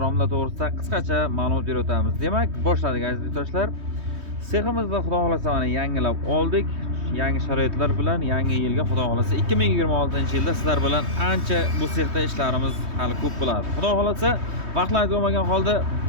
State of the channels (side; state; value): left; late; 3.2 ms